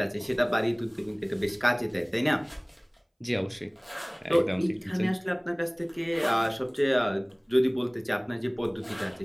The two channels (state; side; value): identical; both; correlation 1.00